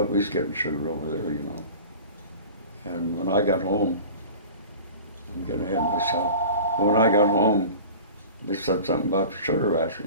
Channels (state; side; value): inverted; both; correlation -0.38